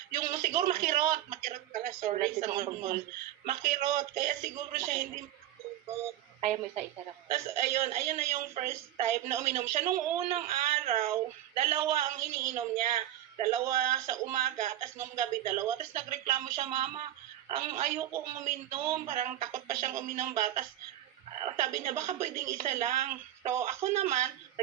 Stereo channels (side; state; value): left; quieter; 12.8 dB